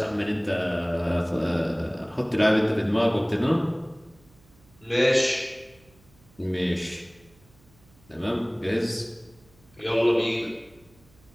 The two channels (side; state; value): right; noise; hum, 29 dB below the sound